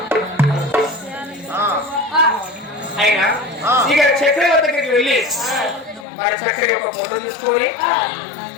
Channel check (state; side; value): drops out; right; at 6.1 s